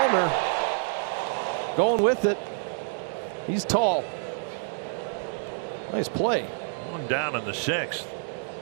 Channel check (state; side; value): silent; left; digital silence